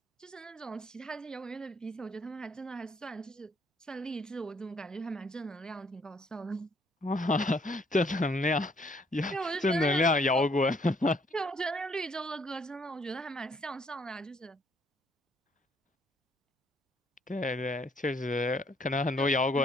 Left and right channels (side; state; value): both; normal; correlation 0.66